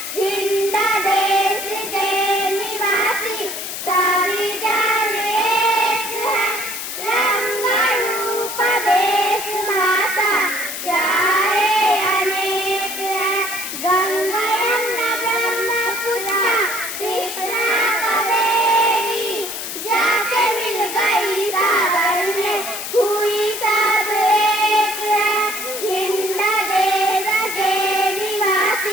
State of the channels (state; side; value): noise; left; hiss, 6 dB below the sound